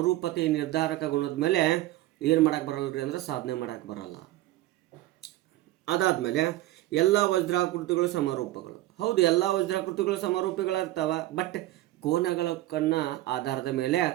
ನಿರ್ಧಾರಕ ಗುಣದ ಮೇಲೆ ಏನು ಮಾಡೋಕ್ಕೆ ಬರಲ್ಲ ರೀ ಅಂದರೆ ಸಾಧನೆ ಮಾಡೋಕ್ಕೆ ಬರಲ್ಲ. ಅದಾದಮೇಲೆ ಎಲ್ಲ ವಜ್ರಾಕೃತಿಗಳು ಸಮರೂಪಗಳು. ಹೌದು, ಎಲ್ಲ ವಜ್ರಾಕೃತಿಗಳು ಸಮರೂಪಿಗಳಿರ್ತಾವೆ, ಬಟ್ ಕೋನಗಳ ಆಧಾರದ ಮೇಲೆ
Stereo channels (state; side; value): quieter; left; 16.3 dB